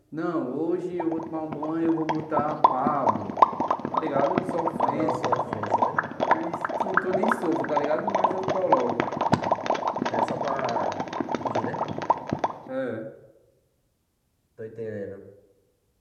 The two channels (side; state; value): both; identical; correlation 1.00